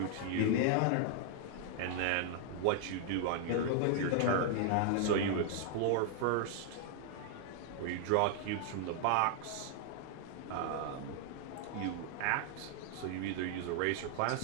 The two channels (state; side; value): different; both; correlation 0.00